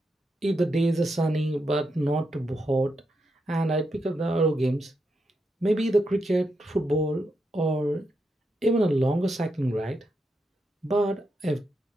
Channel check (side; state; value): both; normal; correlation 0.84